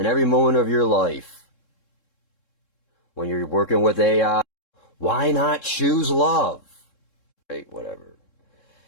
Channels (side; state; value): right; late; 3.7 ms